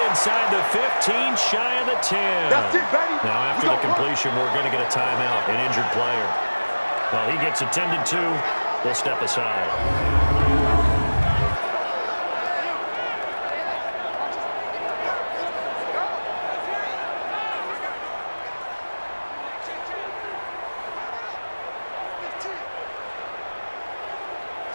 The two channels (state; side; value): inverted; both; correlation -1.00